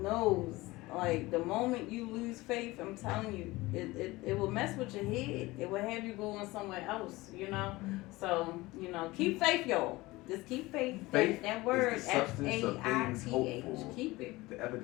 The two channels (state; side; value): quieter; right; 20.5 dB